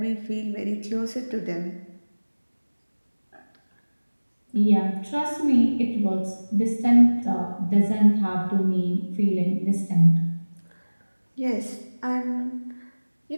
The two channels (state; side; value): inverted; both; correlation -1.00